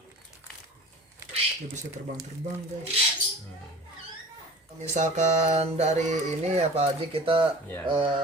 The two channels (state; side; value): normal; both; correlation 0.41